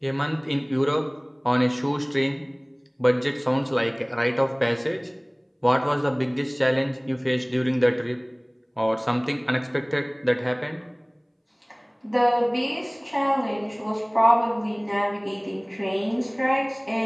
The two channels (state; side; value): identical; both; correlation 1.00